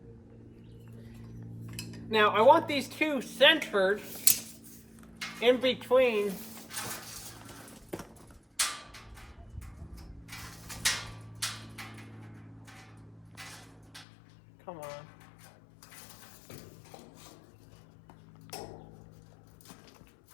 Now I want these two centered in between. Come on.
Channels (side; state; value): right; drops out; at 14.1 s